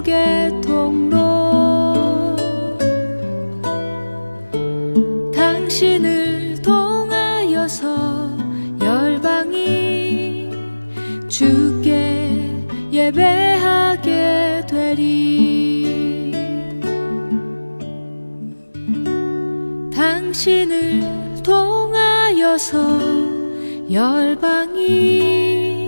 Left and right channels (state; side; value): inverted; both; correlation -1.00